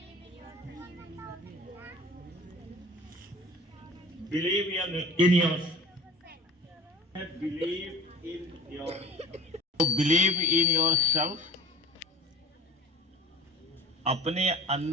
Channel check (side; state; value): both; normal; correlation 0.40